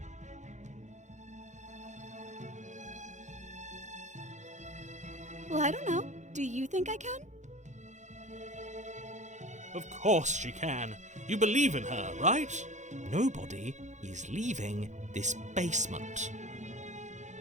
Well, I don't know. Do you think I can? Of course she can. You believe in her, right? Nobody is leaving this basement.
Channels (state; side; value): late; left; 0.35 ms